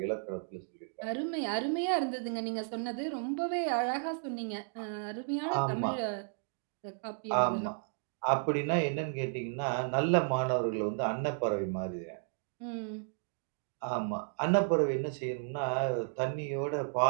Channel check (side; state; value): left; silent; digital silence